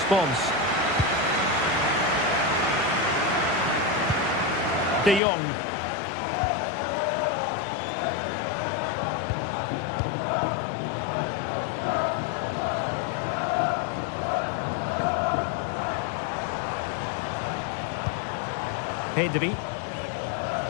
De Jong. Pedri.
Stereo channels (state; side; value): drops out; right; at 5.2 s